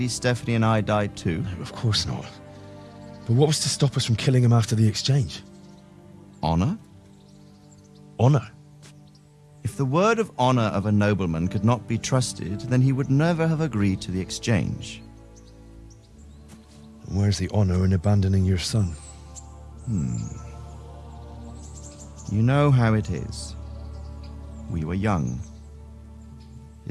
Stephanie and I died too? No, of course not. But what was to stop us from killing him after the exchange? Honor? Honor? If the word of honor of a nobleman could not be trusted, then he would never have agreed to the exchange. Where's the honor in abandoning your son? You know how it is. We were young.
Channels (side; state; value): both; identical; correlation 1.00